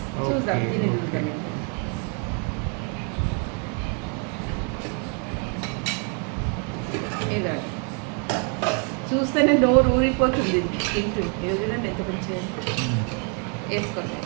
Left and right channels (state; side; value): quieter; left; 36.3 dB